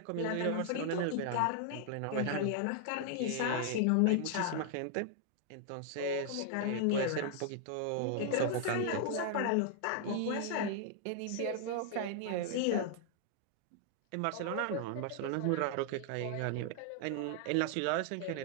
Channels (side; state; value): both; different; correlation 0.00